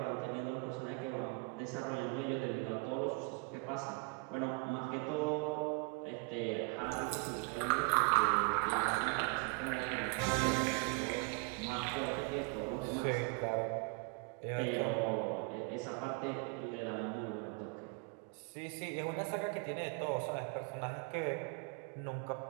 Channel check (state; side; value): quieter; left; 30.7 dB